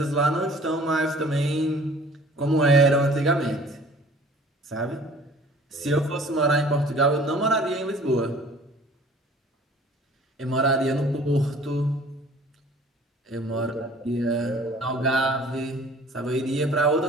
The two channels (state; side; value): normal; both; correlation 0.50